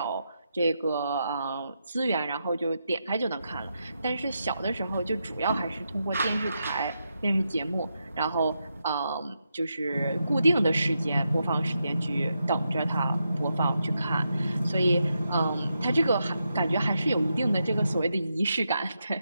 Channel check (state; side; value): inverted; both; correlation -0.85